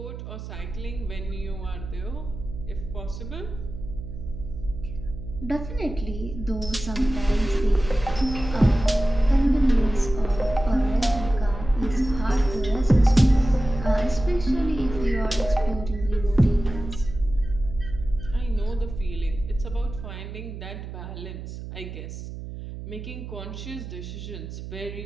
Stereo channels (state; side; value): noise; right; hum, 10 dB below the sound